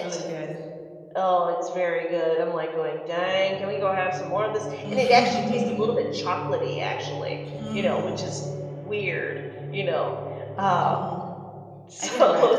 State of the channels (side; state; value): both; identical; correlation 1.00